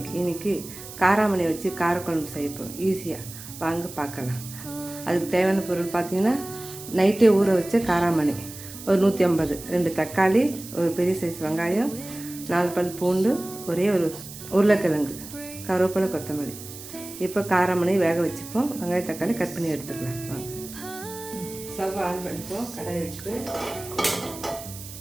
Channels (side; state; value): right; noise; hiss, 14 dB below the sound